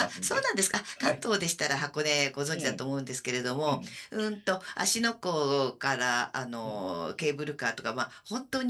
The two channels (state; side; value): identical; both; correlation 1.00